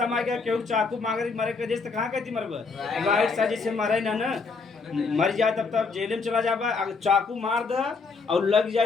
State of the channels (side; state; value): right; quieter; 4.5 dB